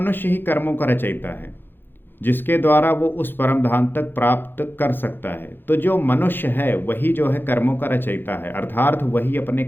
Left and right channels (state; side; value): late; right; 0.099 ms